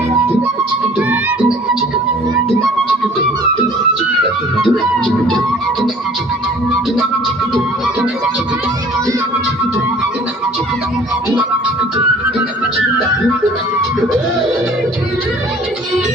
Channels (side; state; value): both; normal; correlation 0.51